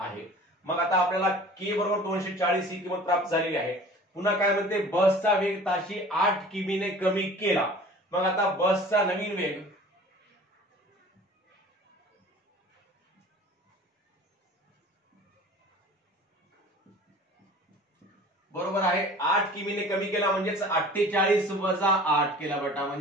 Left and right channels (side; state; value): both; normal; correlation 0.44